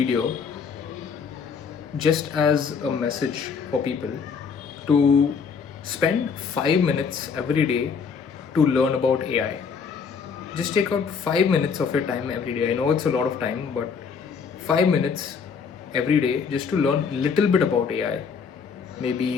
just as a message for people to spend 5 minutes every day to learn about AI. Just take out 5 minutes of your time every day. I know it's a lot of time, but 5 minutes every day just to learn a little bit about AI.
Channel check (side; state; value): right; quieter; 5.9 dB